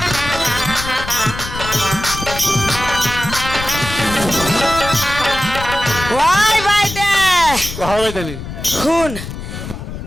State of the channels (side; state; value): left; noise; rumble, 9 dB below the sound